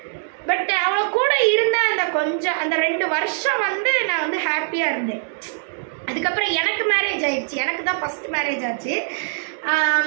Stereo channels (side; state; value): left; silent; 64 dB below the other